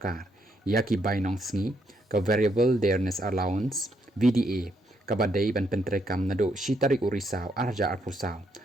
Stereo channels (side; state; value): both; normal; correlation 0.75